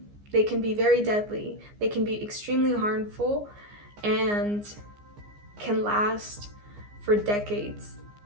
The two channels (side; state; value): left; late; 15 ms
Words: They can be very deadly. They can be extremely harmful and can last for decades